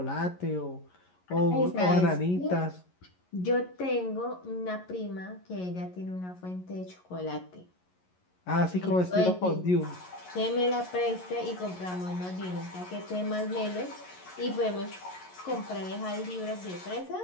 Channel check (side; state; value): right; late; 11 ms